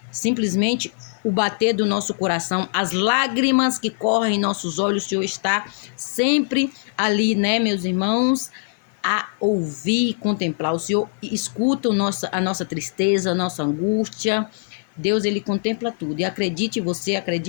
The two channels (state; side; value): silent; right; 56 dB below the other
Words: simplesmente o bater do nosso coração, as lágrimas que correm em nossos olhos. O Senhor está sempre ali, né, meus irmãos, a ouvir e contemplar. O Senhor escuta a nossa tristeza, a nossa angústia. Deus, Ele contempla tudo. E acredite você,